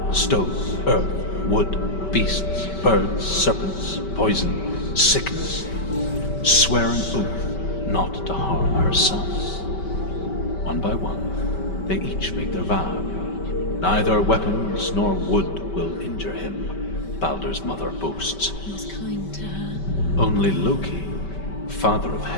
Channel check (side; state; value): right; late; 5.2 ms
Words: stone, earth, wood, beasts, birds, serpents, poison, sickness, swear an oath not to harm her son. One by one, they each make their vow. Neither weapons nor wood will injure him, Baldur's mother boasts. He was kind to her. Only Loki, father of